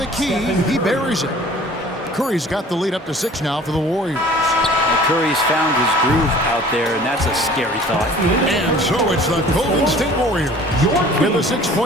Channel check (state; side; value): normal; both; correlation 0.48